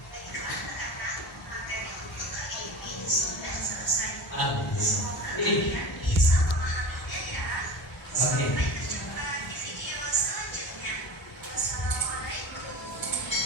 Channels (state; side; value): normal; both; correlation 0.32